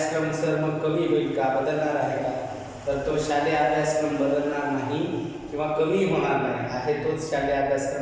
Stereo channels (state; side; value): identical; both; correlation 1.00